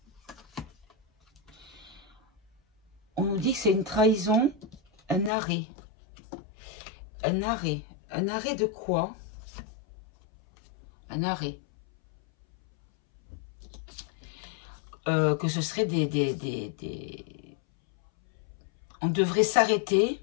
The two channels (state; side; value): drops out; right; at 5.3 s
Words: On nous dit que c'est une trahison, un arrêt. Un arrêt. Un arrêt de quoi? Un arrêt. Que ce serait on devrait